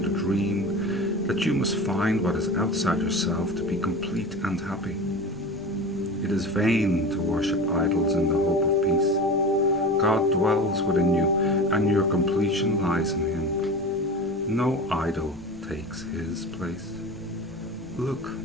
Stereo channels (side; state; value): both; normal; correlation 0.32